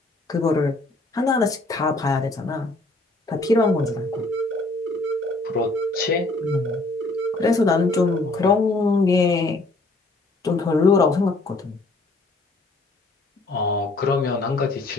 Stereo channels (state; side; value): quieter; right; 3.2 dB